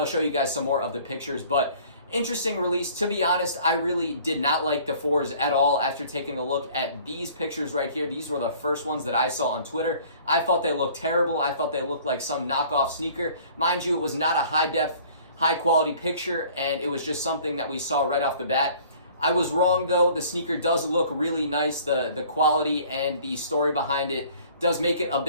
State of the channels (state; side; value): inverted; both; correlation -0.52